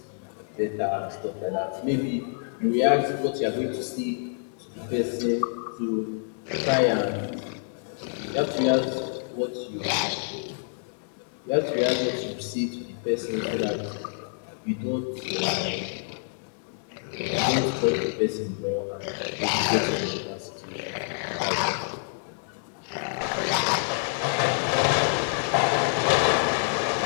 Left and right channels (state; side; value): silent; right; digital silence